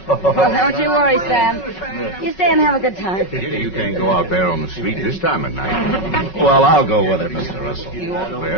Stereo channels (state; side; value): late; right; 5.4 ms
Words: all. Well, don't you worry, Sam. You stay and have a good time. Kitty, you can't go out there on the street this time of night. Well, I'll go with it, Mr. Russell.